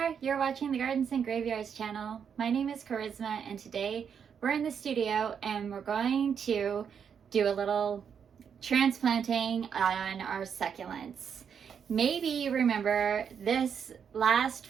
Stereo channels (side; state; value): left; quieter; 7.3 dB